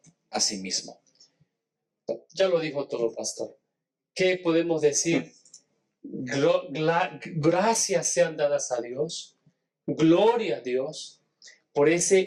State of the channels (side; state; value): both; identical; correlation 1.00